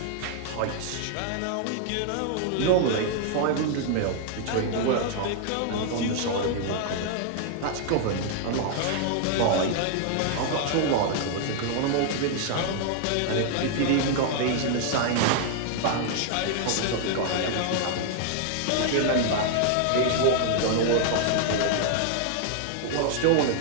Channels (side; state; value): both; different; correlation 0.00